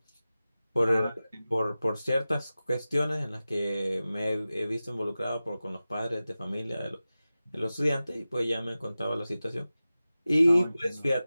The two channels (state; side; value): inverted; both; correlation -0.96